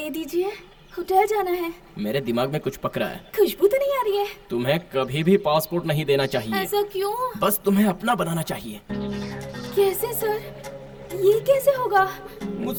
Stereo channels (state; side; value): identical; both; correlation 1.00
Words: दीजिए, होटल जाना है। मेरे दिमाग में कुछ पकड़ा है। खुशबू तो नहीं आ रही है। तुम्हें कभी भी पासपोर्ट नहीं देना चाहिए। ऐसा क्यों? बस तुम्हें अपना बनाना चाहिए। कैसे सर? ये कैसे होगा?